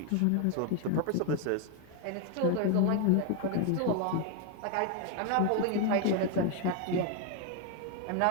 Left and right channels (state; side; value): different; both; correlation 0.01